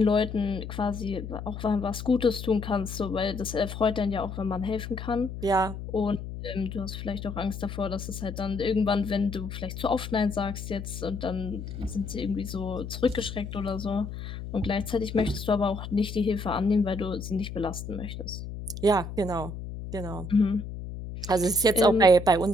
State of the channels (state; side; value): noise; left; hum, 8 dB below the sound